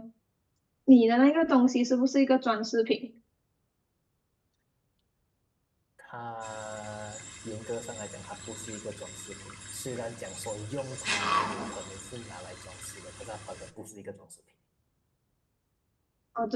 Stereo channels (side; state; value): both; identical; correlation 1.00